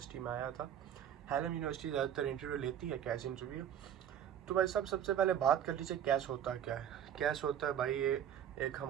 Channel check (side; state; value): left; quieter; 9.7 dB